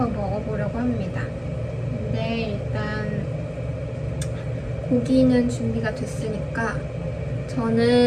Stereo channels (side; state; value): both; identical; correlation 1.00